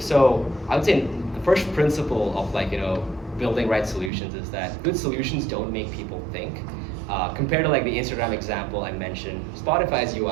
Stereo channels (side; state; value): left; drops out; at 4.1 s